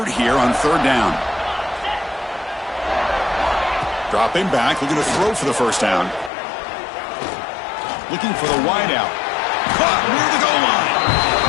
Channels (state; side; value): drops out; right; at 6.3 s